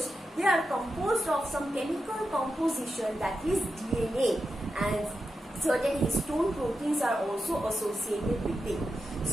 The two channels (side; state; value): both; normal; correlation 0.89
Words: they are composed of some chemical composition, that is DNA, and certain histone proteins are also associated with it.